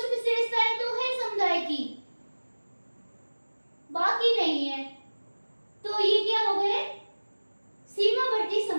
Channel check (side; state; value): both; inverted; correlation -1.00